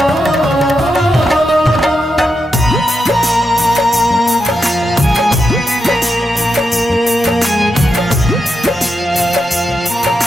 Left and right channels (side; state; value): both; normal; correlation 0.86